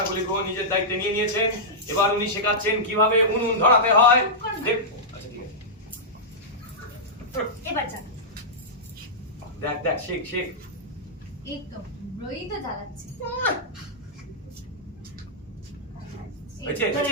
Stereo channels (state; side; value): normal; both; correlation -0.11